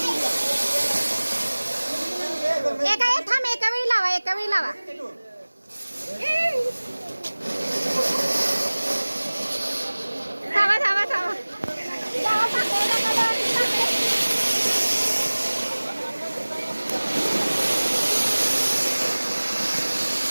एका वेळी लावा एका वेळी लावा थांबा थांबा थांबा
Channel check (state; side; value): inverted; both; correlation -1.00